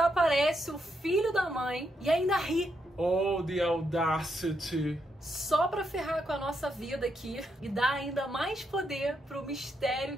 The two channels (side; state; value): both; normal; correlation 0.80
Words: o filho da mãe e ainda ri. Oh, the audacity. Só pra ferrar com a nossa vida aqui e dar ainda mais poder pro mistério